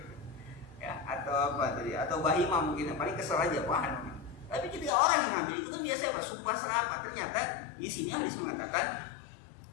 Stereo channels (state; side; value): drops out; right; at 4.9 s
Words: ya atau apa tadi, atau bahima mungkin paling kesel aja wah. Tapi ketika orang yang ngambil itu kan biasanya apa? Sumpah serapah. Ternyata di sini hadis mengatakan